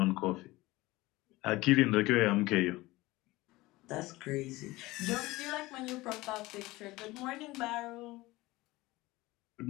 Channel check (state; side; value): quieter; right; 19.8 dB